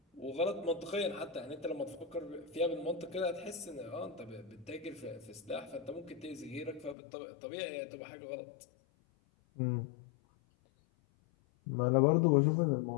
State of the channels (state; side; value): drops out; right; at 7.0 s